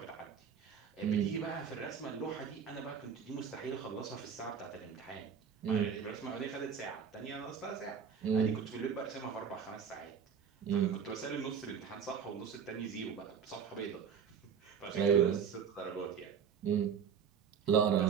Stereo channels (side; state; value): left; quieter; 7.2 dB